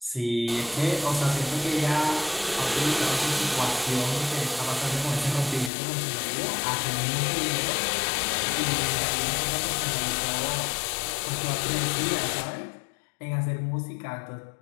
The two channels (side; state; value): right; drops out; at 5.7 s